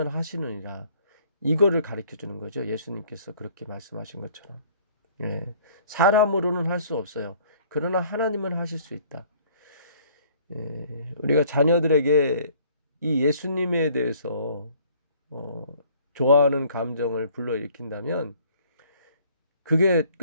하시느니라 이거를 가르쳐 주는 거죠. 예수님께서 그렇게 말씀하신 것처럼 사람으로는 할 수 없어요. 그러나 하나님은 하실 수 있다. 우리가 자녀들에게 이 예수님에 대해서 좋아하는 감정을 불러일으킨다면 그게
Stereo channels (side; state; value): both; inverted; correlation -0.57